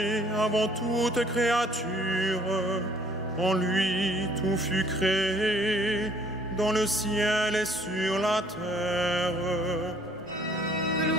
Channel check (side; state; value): left; noise; hum, 30 dB below the sound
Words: avant toute créature. En lui, tout fut créé, dans le ciel et sur la terre.